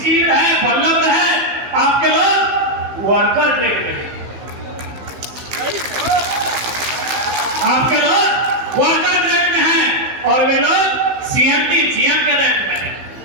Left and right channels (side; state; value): left; late; 15 ms